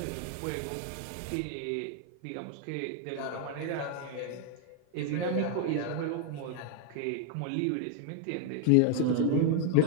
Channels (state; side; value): different; both; correlation 0.00